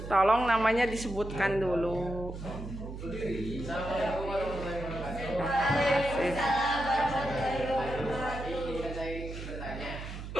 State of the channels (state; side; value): noise; right; hum, 9 dB below the sound